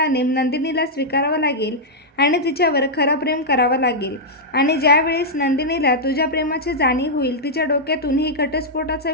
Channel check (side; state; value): both; normal; correlation -0.07